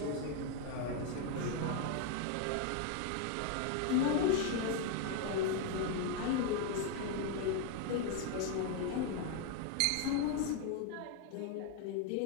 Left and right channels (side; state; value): both; different; correlation 0.01